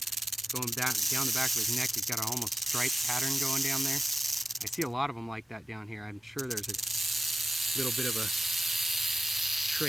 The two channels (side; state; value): both; normal; correlation 0.96